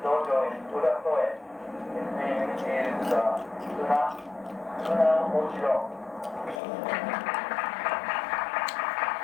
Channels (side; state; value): right; drops out; at 6.6 s